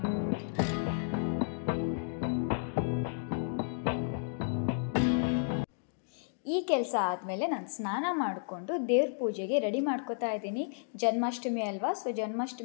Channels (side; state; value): right; silent; digital silence